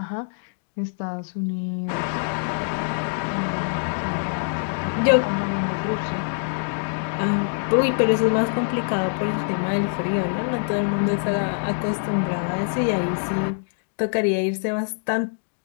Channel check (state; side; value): silent; right; digital silence